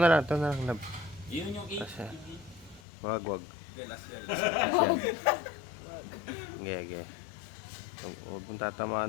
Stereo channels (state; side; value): drops out; right; at 2.8 s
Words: na lang, love. Yun yung Asa? 8. Wag. Hindi, last yan. Yan. Okay. Huwag mong